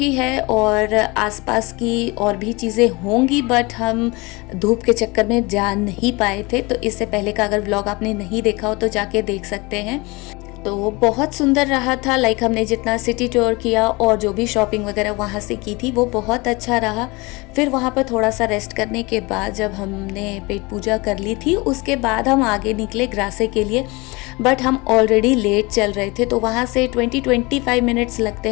है और आसपास की और भी चीज़ें होंगी, बट हम धूप के चक्कर में जा नहीं पाए थे। तो इससे पहले का अगर व्लॉग आपने नहीं देखा हो तो जाके देख सकते हैं। तो बहुत सुंदर रहा था। हमने जितना सिटी टूर किया और जो भी शॉपिंग वगैरह वहाँ से की थी वो बहुत अच्छा रहा। फिर वहाँ पर थोड़ा सा रेस्ट करने के बाद जब हमने पेट पूजा कर ली थी, उसके बाद हम आगे निकले ग्रासे के लिए। बट हम ऑलरेडी लेट चल रहे थे, तो वहाँ से 20-25 मिनट्स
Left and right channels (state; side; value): quieter; right; 25.1 dB